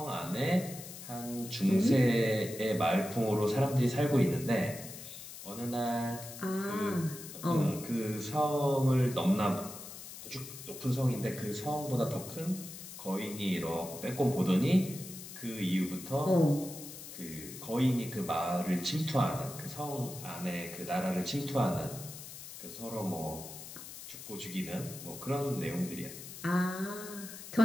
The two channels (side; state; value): left; noise; hiss, 12 dB below the sound